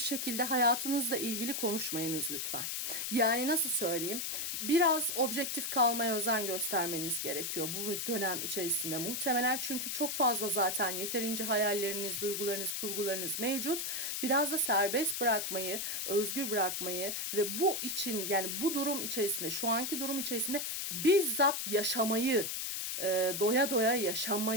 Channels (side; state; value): left; noise; hiss, 2 dB below the sound